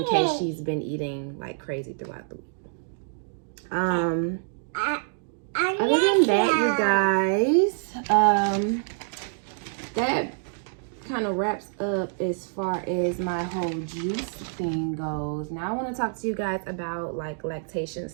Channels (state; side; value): silent; left; digital silence